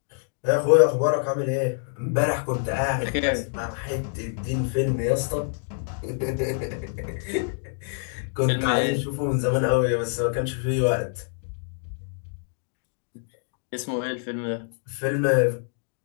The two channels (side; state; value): right; silent; digital silence